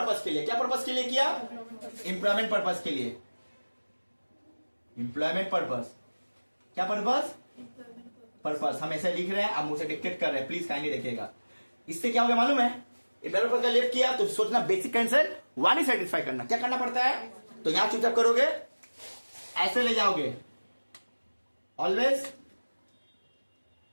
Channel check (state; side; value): inverted; both; correlation -1.00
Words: के लिए। क्या पर्पस के लिए किया, एम्प्लॉयमेंट पर्पस के लिए, एम्प्लॉयमेंट पर्पस, क्या पर्पस, पर्पस। हम ऐसे लिख रहे हैं, आप मुझसे डिक्टेट कर रहे हैं, प्लीज काइंडली देखिएगा। इससे क्या हो गया मालूम है, एम्प्लॉयमेंट पर्पस का लेफ्ट किया तो सोचना बेसिक कंसेप्ट वन ही सेटिस्फाई करना, क्या करना पड़ता है, तो यहां चुपचाप करोगे, ऐसे ले जाओगे, always